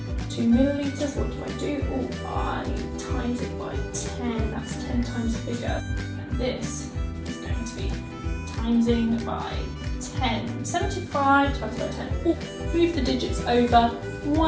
to millilitres, what do I do? Oh, I times it by 10, that's 10 times bigger. And this is going to be timesing by 10. 75 times by 10. Oh, move the digits over,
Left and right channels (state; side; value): identical; both; correlation 1.00